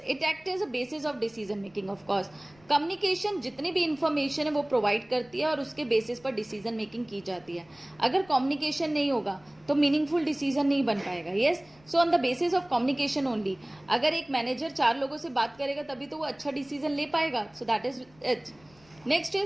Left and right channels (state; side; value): noise; left; rumble, 29 dB below the sound